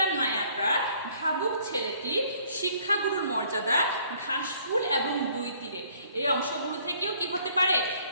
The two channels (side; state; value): both; inverted; correlation -0.60